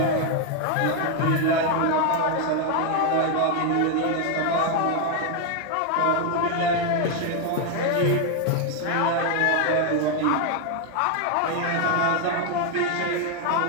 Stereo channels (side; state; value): both; different; correlation 0.01